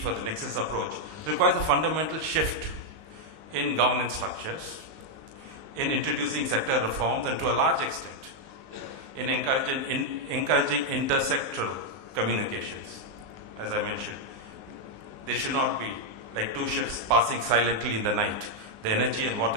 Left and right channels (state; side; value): late; left; 19 ms